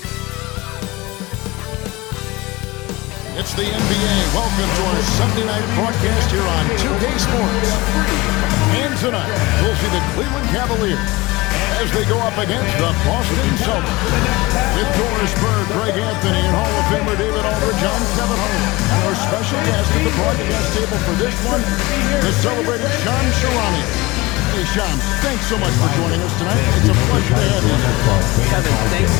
It's the NBA. Welcome to our Sunday night broadcast here on 2K Sports. And tonight, we'll see the Cleveland Cavaliers as they go up against the Boston Celtics. With Doris Bird, Greg Anthony, and Hall of Famer David Aldridge, I'm Kevin Harlan. And our special guest at the broadcast table for this one, the celebrated Shams Charania. Hey, Shams, thanks so much for joining us tonight. It's a pleasure to have you. Kevin, thanks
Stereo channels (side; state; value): right; quieter; 21.6 dB